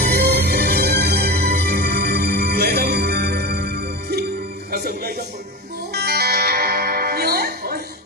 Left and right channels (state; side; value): normal; both; correlation 0.24